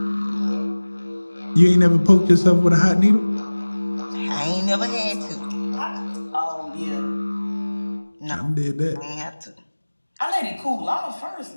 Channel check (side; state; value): both; inverted; correlation -1.00